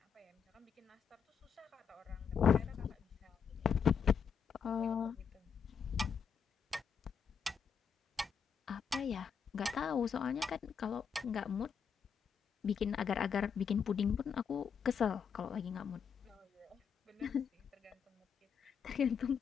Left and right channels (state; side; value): quieter; right; 6.7 dB